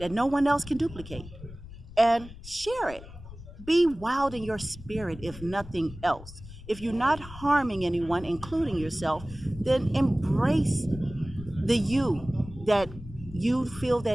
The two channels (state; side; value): noise; left; rumble, 15 dB below the sound